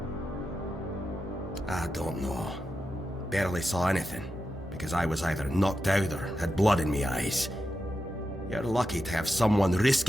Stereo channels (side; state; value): both; normal; correlation 0.89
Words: I don't know. Barely saw anything, because I was either knocked out or had blood in me eyes. You're lucky to have someone